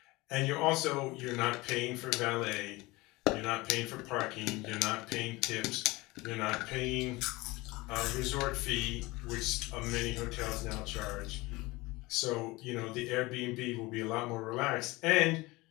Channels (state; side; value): quieter; right; 21.9 dB